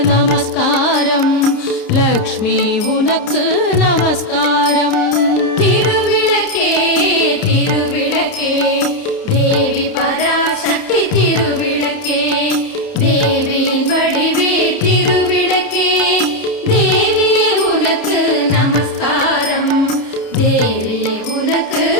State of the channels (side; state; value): right; late; 30 ms